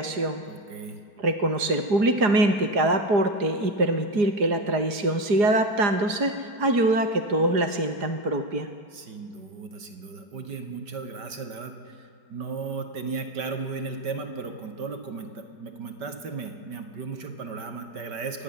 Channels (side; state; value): left; late; 5.2 ms